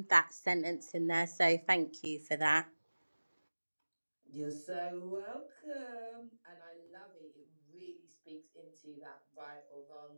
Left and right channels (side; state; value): both; inverted; correlation -1.00